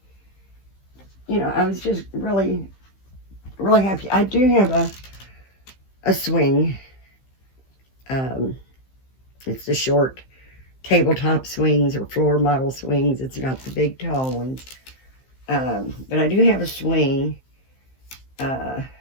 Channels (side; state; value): right; late; 15 ms